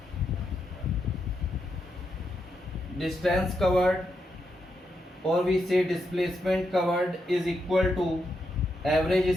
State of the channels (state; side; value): normal; both; correlation 0.83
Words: distance covered or we say displacement covered is equal to average